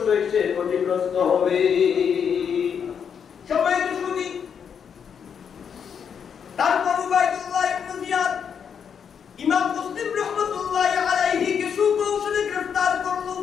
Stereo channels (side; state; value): right; quieter; 7.3 dB